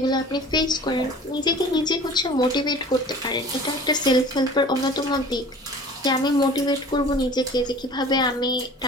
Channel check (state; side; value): normal; both; correlation 0.44